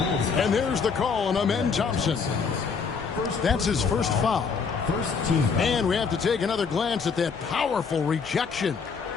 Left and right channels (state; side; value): quieter; right; 5.5 dB